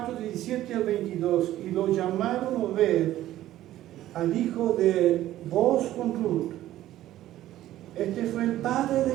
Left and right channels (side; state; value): left; quieter; 13.9 dB